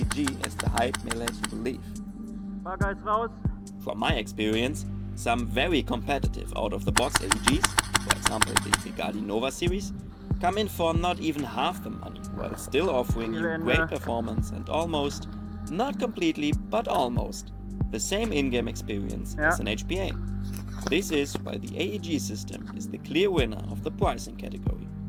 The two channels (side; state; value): both; identical; correlation 1.00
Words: as the hype may let you believe. From my experience, some very competitive out-of-the-box AEGs, for example the Bugatti Nova series, come in for not even half the money, while still offering you great performance and almost, not completely, but almost, the same in-game experience as an HPA. This is why the AEG system is the clear winner of the pricing category.